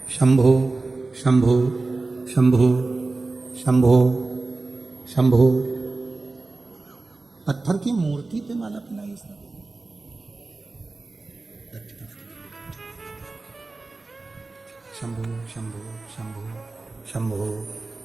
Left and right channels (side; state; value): left; quieter; 3.5 dB